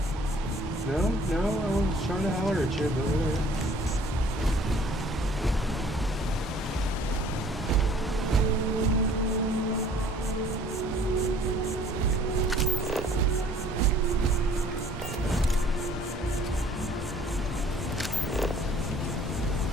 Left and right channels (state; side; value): normal; both; correlation 0.55